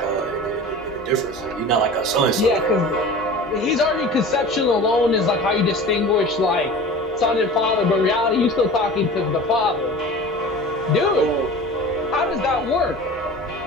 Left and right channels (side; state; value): both; normal; correlation 0.37